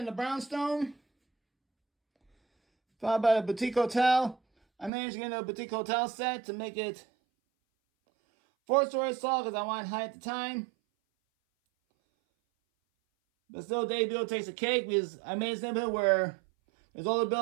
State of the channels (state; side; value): drops out; left; at 4.9 s